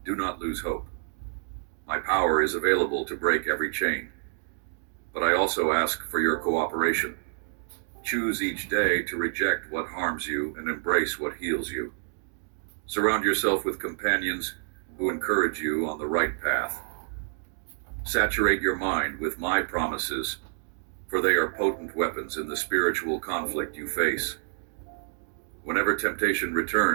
do not lose hope. My power is available to break every chain. But I also ask for your cooperation. Choose each day to reject what harms you and embrace what heals you. Surround yourself with companions who encourage you on the right path. Saturate your mind with my promises, for they are potent weapons in the spiritual conflict you face. Whenever temptation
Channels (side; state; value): left; silent; digital silence